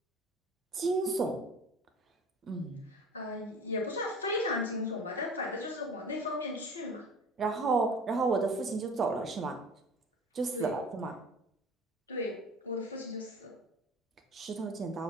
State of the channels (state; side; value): normal; both; correlation 0.42